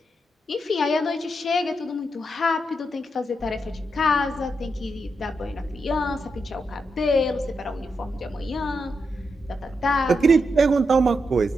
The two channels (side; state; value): both; normal; correlation 0.84